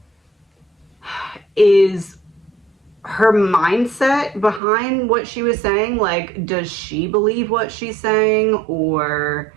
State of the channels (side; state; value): left; drops out; at 4.6 s